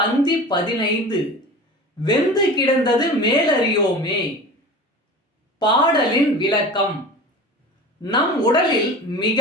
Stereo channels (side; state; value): both; normal; correlation 0.36